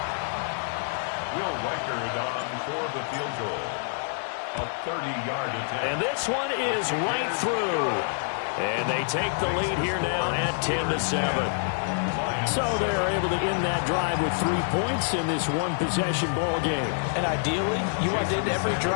Will Reichard on for the field goal. A 30-yard attempt. And this one is right through. And they take the lead here now at 10-7. So they're able to end that drive with 3 points in this one-possession ball game. And ideally, you want to end every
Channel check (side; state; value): right; silent; digital silence